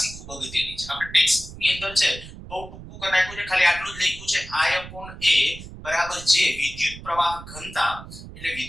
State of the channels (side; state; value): right; noise; rumble, 14 dB below the sound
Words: ખૂબ અગત્યની છે. આપણે ટેક્સ્ટ બુકની અંદર છે બહુ ટૂંકું કરી નાખ્યું છે, ખાલી આટલું જ લખ્યું છે I upon a બરાબર જે વિદ્યુત પ્રવાહ ઘનતા. એટલે